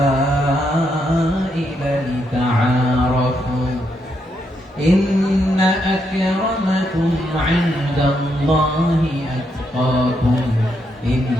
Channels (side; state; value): both; normal; correlation 0.79